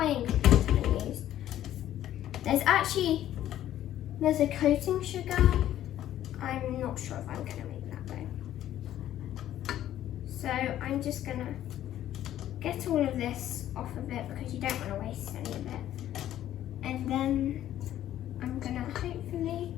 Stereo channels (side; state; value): right; quieter; 12.2 dB